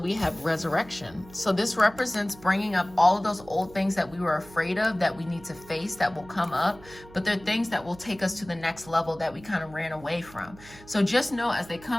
have resurrection. So this represents bringing up all of those old things that we were afraid of, that we need to face, that will come up, but they're things that will take us to the next level that we kind of ran away from. So just know as they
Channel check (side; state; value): right; noise; hum, 21 dB below the sound